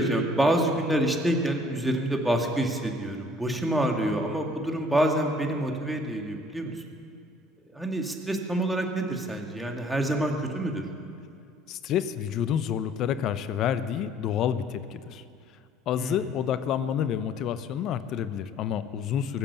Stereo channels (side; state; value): both; normal; correlation 0.57